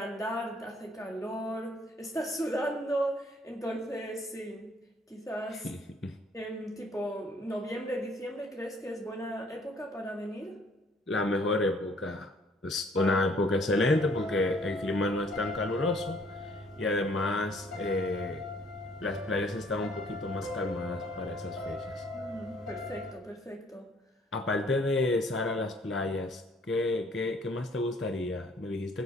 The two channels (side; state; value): both; normal; correlation 0.61